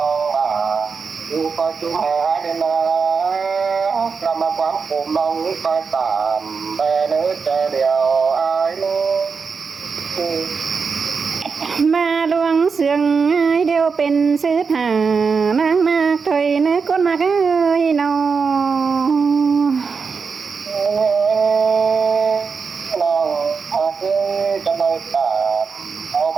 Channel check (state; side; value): quieter; left; 5.3 dB